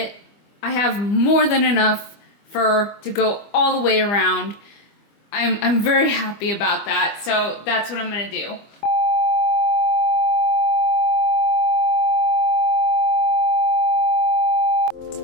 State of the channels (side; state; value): right; late; 25 ms